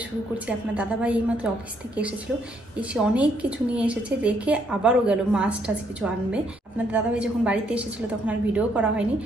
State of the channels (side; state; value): both; normal; correlation 0.71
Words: শুরু করছি। আপনার দাদাভাই এইমাত্র অফিস থেকে এসেছিল, এসে অনেক কিছু নিয়ে এসেছে, রেখে আবারও গেল মাছ টাছ কিছু আনবে। আপনার দাদাভাই যখন বাড়িতে এসেছিল তখন আর ভিডিও করা হয়নি,